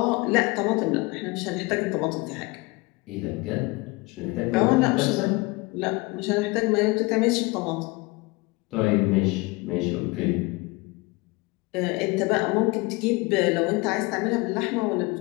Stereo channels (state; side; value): quieter; right; 24.7 dB